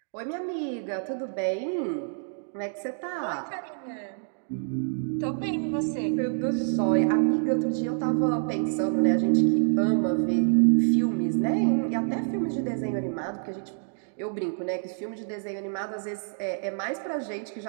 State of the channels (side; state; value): left; silent; digital silence